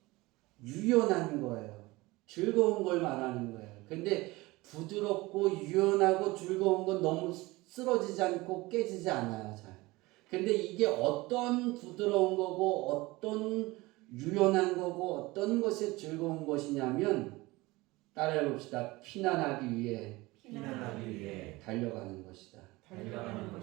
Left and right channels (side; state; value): left; quieter; 21.3 dB